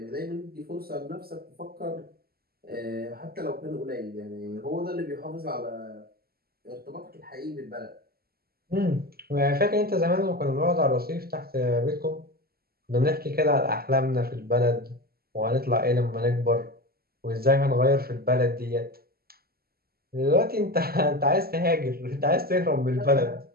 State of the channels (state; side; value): late; left; 0.45 ms